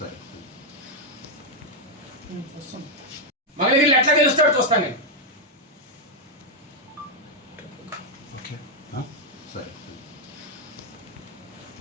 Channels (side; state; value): both; normal; correlation 0.00